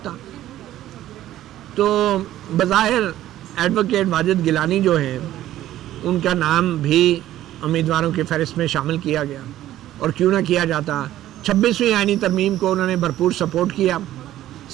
تو بظاہر ایڈوکیٹ واجد گیلانی جو ہیں ان کا نام بھی امیدواروں کی فہرست میں شامل کیا گیا. اور کیوں نہ کیا جاتا, 26ویں آئینی ترمیم کو انہوں نے بھرپور سپورٹ کیا,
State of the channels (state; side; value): quieter; left; 13.5 dB